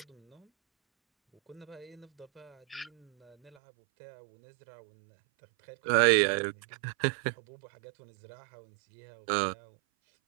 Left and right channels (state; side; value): drops out; left; at 3.5 s